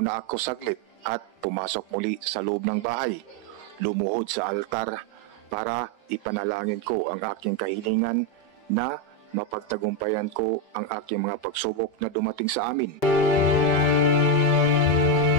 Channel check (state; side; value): late; right; 5.3 ms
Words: ako saglit at pumasok muli sa loob ng bahay. Lumuhod sa altar para ipanalangin ko ang aking kahilingan na mapagtagumpayan ko ang aking mga pagsubok na dumating sa amin.